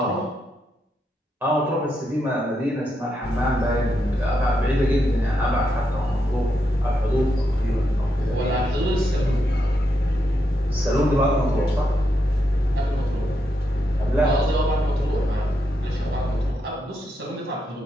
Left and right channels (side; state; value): both; normal; correlation 0.82